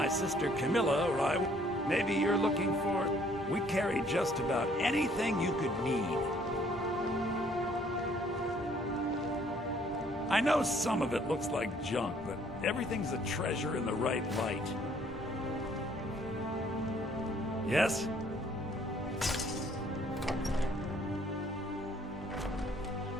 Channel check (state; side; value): normal; both; correlation 0.62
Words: sister Camilla or I, maybe you're looking for... We carry just about anything you could need. I know some of it looks like junk, but everything's a treasure in the right light. Yes?